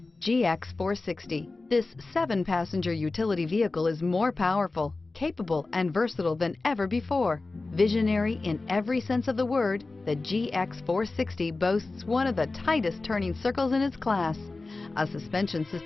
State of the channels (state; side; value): quieter; right; 3.5 dB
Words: GX 460. This 7-passenger utility vehicle is more powerful, capable, and versatile than ever before. Visionary in every sense of the word, the GX 460 boasts one of the tightest turning circles in its class, a suspension